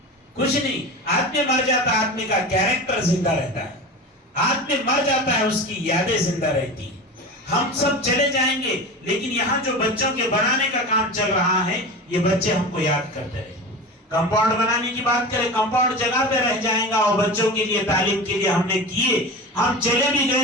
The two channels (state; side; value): normal; both; correlation 0.29